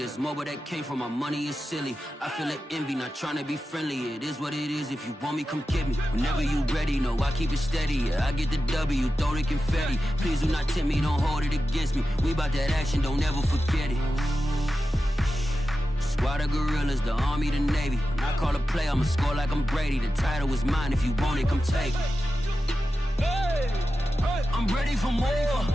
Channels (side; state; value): both; normal; correlation 0.92